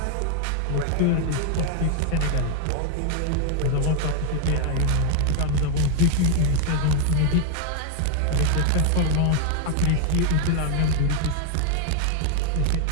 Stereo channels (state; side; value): different; both; correlation 0.01